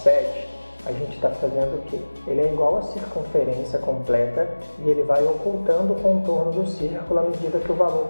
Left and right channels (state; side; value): inverted; both; correlation -1.00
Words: a gente está fazendo o quê? Ele é igual à circunferência completa e ele vai ocultando o contorno do círculo à medida que o valor